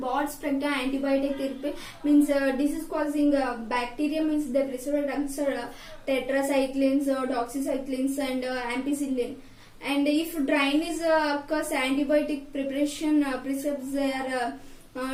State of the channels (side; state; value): both; identical; correlation 1.00